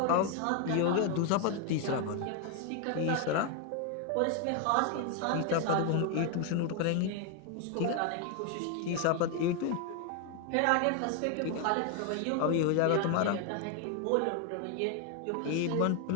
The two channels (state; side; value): different; both; correlation 0.01